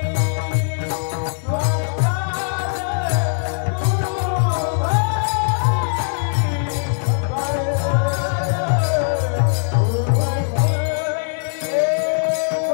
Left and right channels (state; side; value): silent; right; 64 dB below the other